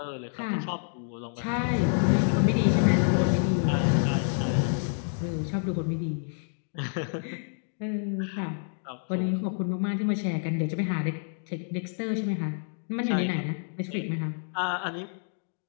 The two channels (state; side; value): silent; right; digital silence